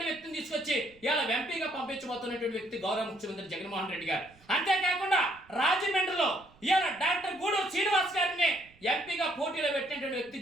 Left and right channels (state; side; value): noise; right; rumble, 28 dB below the sound